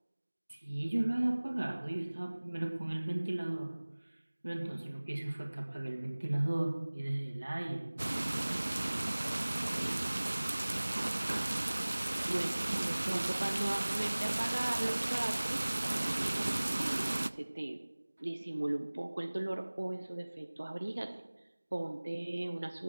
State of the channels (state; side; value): inverted; both; correlation -1.00